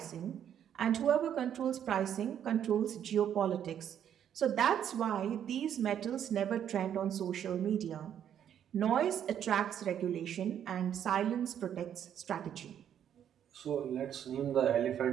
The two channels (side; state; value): left; quieter; 9.5 dB